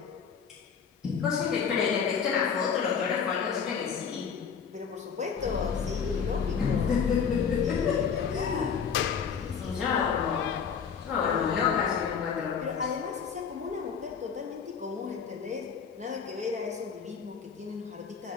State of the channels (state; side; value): quieter; right; 6.6 dB